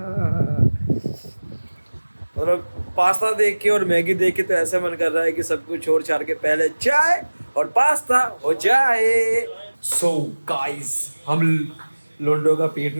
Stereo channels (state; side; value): inverted; both; correlation -1.00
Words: मतलब पास्ता देख के और मैगी देख के तो ऐसा मन कर रहा है कि सब कुछ छोड़ छाड़ के पहले चाय और पास्ता हो जाए। सो गाइस, हम लोंडो का पेट